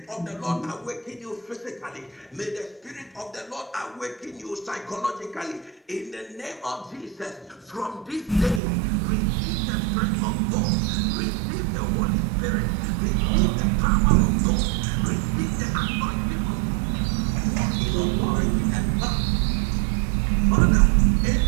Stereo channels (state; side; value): drops out; left; at 8.6 s